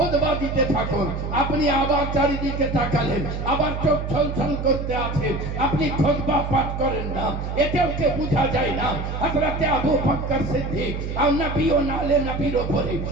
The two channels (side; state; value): right; noise; hum, 5 dB below the sound